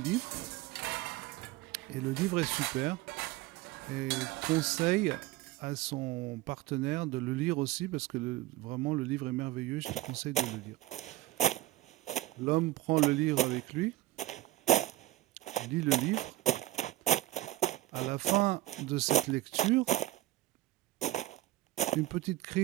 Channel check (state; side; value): quieter; left; 16.6 dB